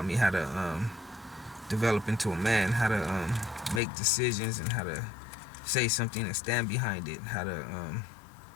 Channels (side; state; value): right; drops out; at 3.8 s